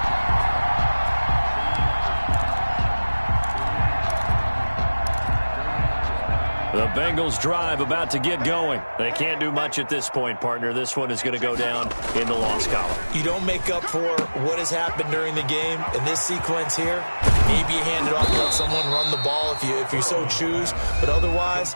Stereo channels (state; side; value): inverted; both; correlation -1.00